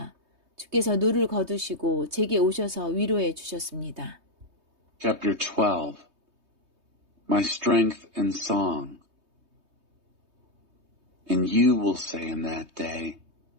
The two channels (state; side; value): late; left; 3.2 ms